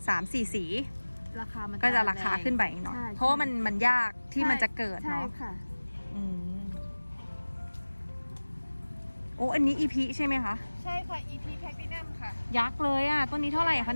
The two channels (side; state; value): both; inverted; correlation -1.00